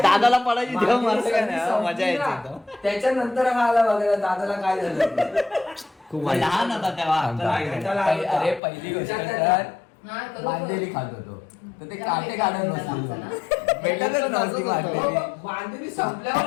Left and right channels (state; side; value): drops out; right; at 8.6 s